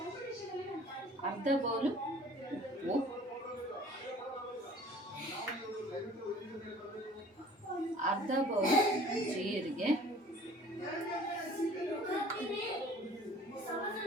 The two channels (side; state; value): both; normal; correlation 0.49